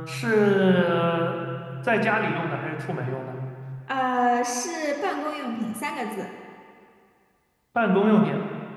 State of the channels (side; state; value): both; identical; correlation 1.00